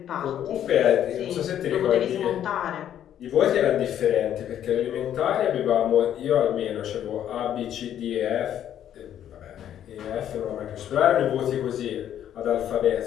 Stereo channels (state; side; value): quieter; right; 10.5 dB